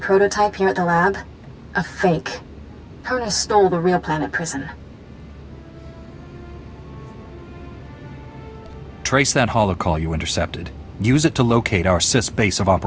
prototype here at the lab? A fake. Tarnus stole the real Planet Prison. Trace that holocall you intercepted. Use it to locate our Sith's base of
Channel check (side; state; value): both; identical; correlation 1.00